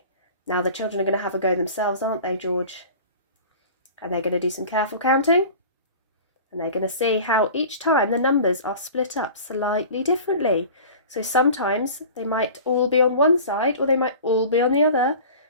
now the children are going to have a go themselves, aren't they, George? And they're going to do some careful counting. And they're going to see how each time the numbers are split up slightly differently. So sometimes they might all be on one side or they might all be on the other,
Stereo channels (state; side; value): inverted; both; correlation -0.40